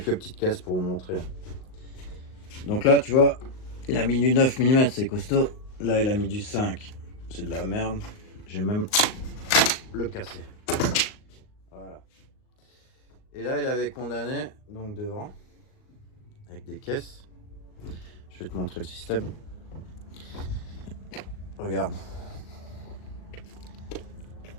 petites caisses pour vous montrer. Donc là, tu vois, il a mis du 9 mm, c'est costaud. Là, il a mis du 5. C'est de la merde. J'ai même le cassé. Voilà. Et là, il avait condamné, donc devant, avec des caisses. Je vais te montrer le système. Regarde.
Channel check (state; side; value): late; right; 38 ms